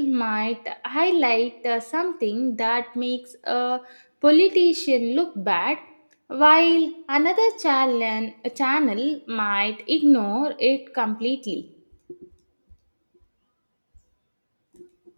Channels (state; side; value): inverted; both; correlation -1.00